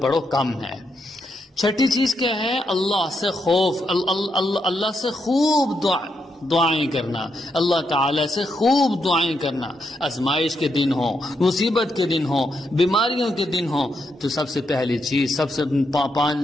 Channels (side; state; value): both; normal; correlation 0.81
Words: پڑھو کم ہے۔ چھٹی چیز کیا ہے؟ اللہ سے خوف، اللہ سے خوب دعائیں کرنا، اللہ تعالیٰ سے خوب دعائیں کرنا۔ آزمائش کے دن ہوں، مصیبت کے دن ہوں، بیماریوں کے دن ہوں، تو سب سے پہلی چیز، سب سے